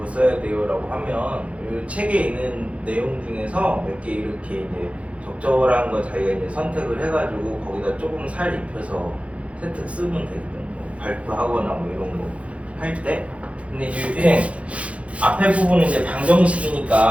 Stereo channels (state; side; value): late; left; 0.063 ms